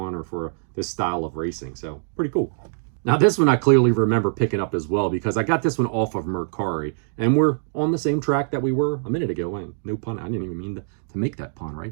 or for this style of racing. So pretty cool. Now this one I clearly remember picking up as well because I got this one off of Mercari, and we're on the same track that we were a minute ago. And no pun, I didn't even mean to make that pun,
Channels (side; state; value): left; silent; 63 dB below the other